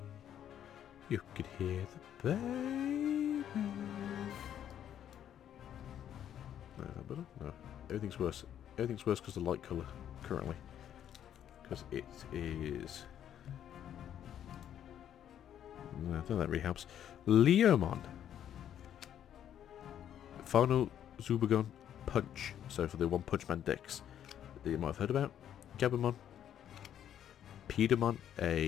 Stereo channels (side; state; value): right; quieter; 10.1 dB